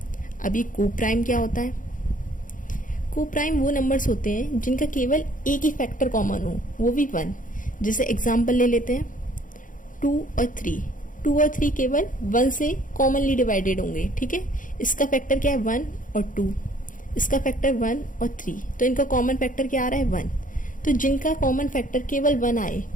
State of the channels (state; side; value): late; right; 0.38 ms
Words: अभी को प्राइम क्या होता है? को प्राइम वो नंबर्स होते हैं जिनका केवल एक ही फैक्टर कॉमन हो, वो भी 1। जैसे एग्जाम्पल ले लेते हैं 2 और 3। 2 और 3 केवल 1 से कॉमनली डिवाइडेड होंगे। ठीक है, इसका फैक्टर क्या है? 1 और 2। इसका फैक्टर 1 और 3, तो इनका कॉमन फैक्टर क्या आ रहा है? 1। तो जिनका कॉमन फैक्टर केवल 1 आए